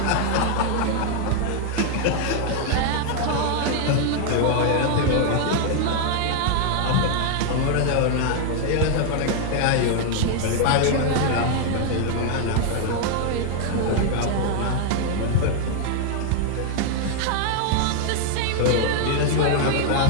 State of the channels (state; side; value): different; both; correlation 0.00